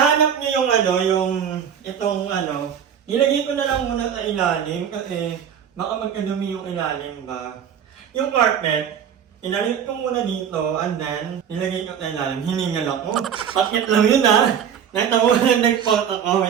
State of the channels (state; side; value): quieter; left; 8.4 dB